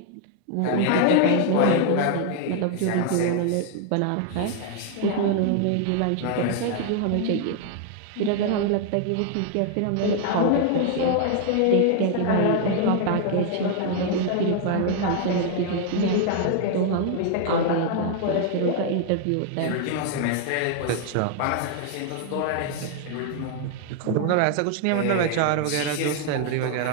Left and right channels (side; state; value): both; different; correlation 0.00